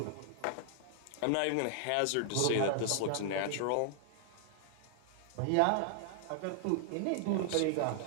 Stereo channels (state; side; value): different; both; correlation 0.00